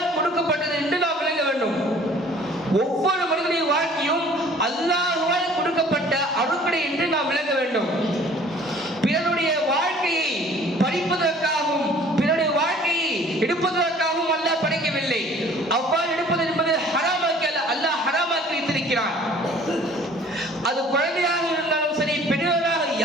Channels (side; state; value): both; normal; correlation 0.52